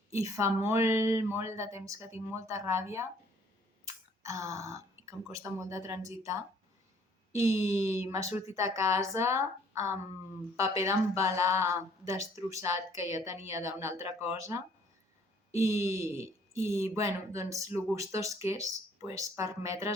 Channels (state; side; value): normal; both; correlation 0.59